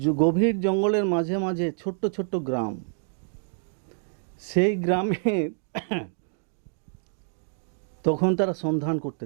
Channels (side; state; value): left; silent; 60 dB below the other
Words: গভীর জঙ্গলের মাঝে মাঝে ছোট্ট ছোট্ট গ্রাম। সেই গ্রামে তখন তারা সন্ধান করতে